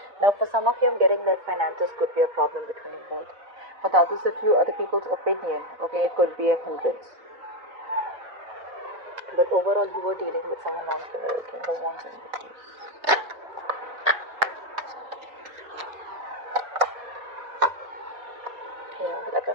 Now, for some of you, I'm getting that finances could be a problem between you both. For the others of you, other people's opinion, okay, it could be a hindrance. But overall, you were dealing with someone else, okay, the ones in the case. Yeah, like I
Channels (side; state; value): left; late; 3.9 ms